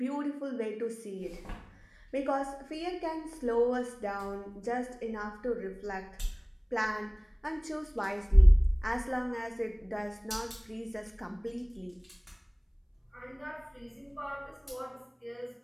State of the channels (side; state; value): both; identical; correlation 1.00